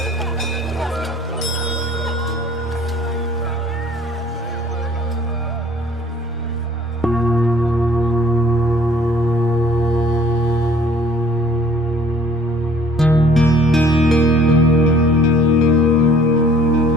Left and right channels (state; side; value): normal; both; correlation 0.55